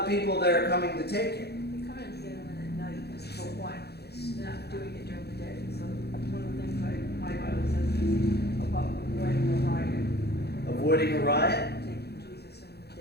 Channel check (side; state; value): right; late; 0.47 ms